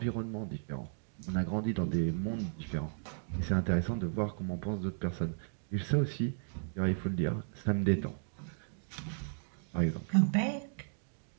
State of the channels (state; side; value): silent; left; digital silence